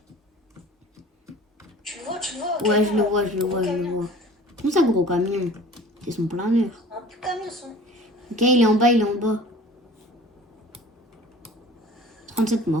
Tu le vois, tu le vois. Ouais, je le vois, je le vois, je le vois. Comment ça, gros camion? C'est son planeur. Un petit camion, son. Ok, il est en bas, il est en bas. 37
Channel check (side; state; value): both; normal; correlation 0.45